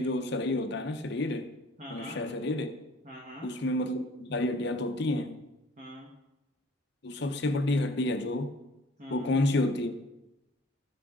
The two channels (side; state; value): both; normal; correlation 0.52